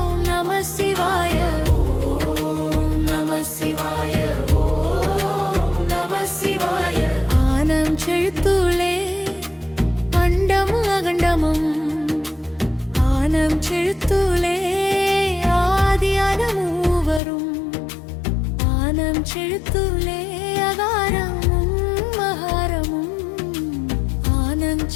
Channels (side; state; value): right; drops out; at 17.2 s